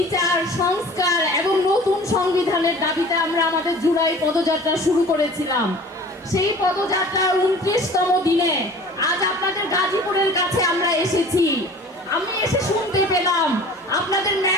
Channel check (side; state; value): both; normal; correlation 0.44